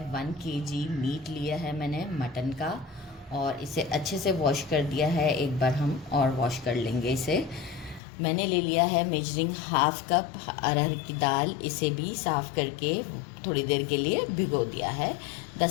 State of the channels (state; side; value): drops out; right; at 8.0 s